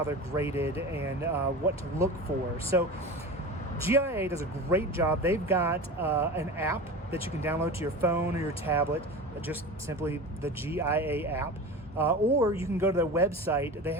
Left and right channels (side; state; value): both; normal; correlation 0.30